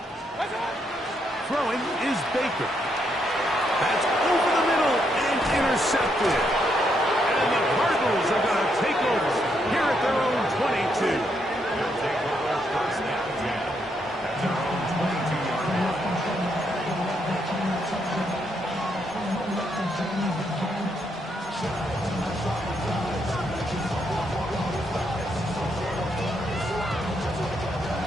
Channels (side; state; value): both; normal; correlation 0.77